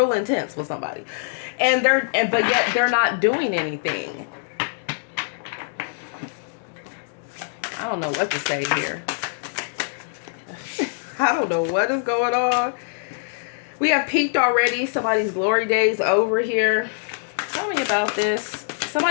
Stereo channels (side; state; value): right; silent; digital silence